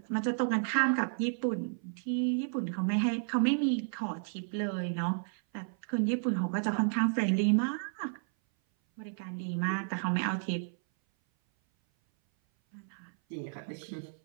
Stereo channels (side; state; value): left; silent; 56 dB below the other